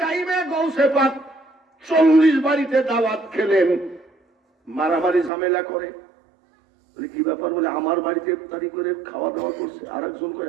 টাইমে গৌসে পাক 40 বাড়িতে দাওয়াত খেলেন, মারামারি ঝামেলা করে। কি ব্যাপার? বলে আমার বাড়িতে ইফতারি করে খাওয়া দাওয়া করছে, আরেকজন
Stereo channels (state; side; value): drops out; left; at 5.3 s